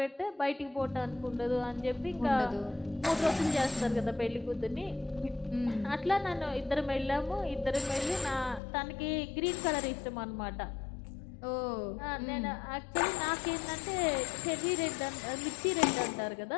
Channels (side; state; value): right; drops out; at 8.6 s